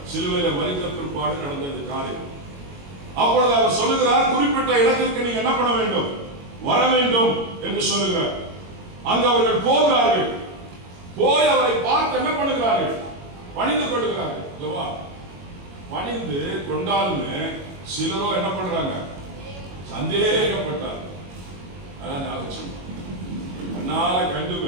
சிலுவையில மரித்த பிற்பாடு நடந்த காரியம். அப்பொழுது அவர் சொல்லுகிறார், குறிப்பிட்ட இடத்திற்கு நீங்க என்ன பண்ண வேண்டும், வர வேண்டும் என்று சொல்லுகிறார். அங்கு அவர்கள் போகிறார்கள். போய் அவரை பார்த்து என்ன பண்ணுகிறார்கள், பணிந்து கொள்கிறார்கள். பணிந்து கொண்டாலுமே சிலரோ என்ன பண்றாங்க, சந்தேகப்பட்டார். அதனால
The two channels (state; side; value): late; left; 22 ms